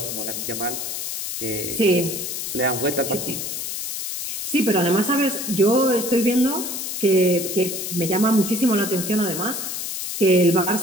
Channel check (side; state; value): left; noise; hiss, 5 dB below the sound